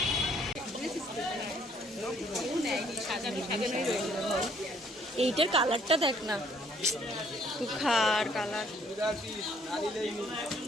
এইটার কালারটা দেখ না, তুখার কালার,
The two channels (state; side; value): normal; both; correlation 0.64